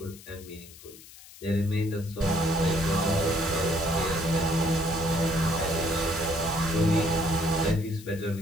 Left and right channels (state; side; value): noise; left; hiss, 19 dB below the sound